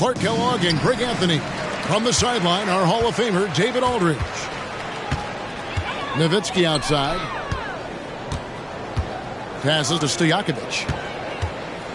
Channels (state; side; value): identical; both; correlation 1.00